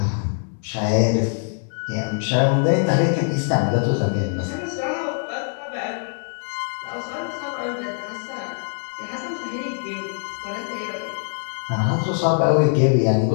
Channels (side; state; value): right; silent; 63 dB below the other